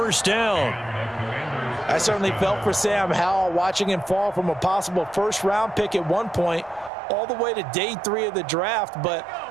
down. I certainly felt for Sam Howell watching him fall from a possible first-round pick at one point all the way to day 3 of the draft, but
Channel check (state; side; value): drops out; left; at 6.9 s